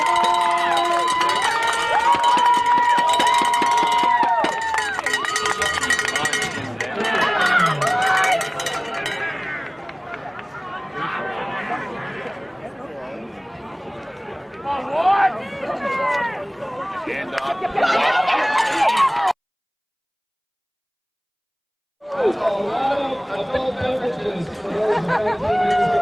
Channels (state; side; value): identical; both; correlation 1.00